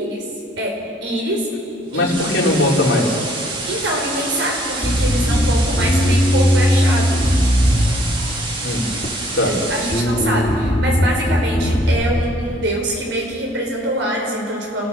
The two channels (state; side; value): normal; both; correlation 0.62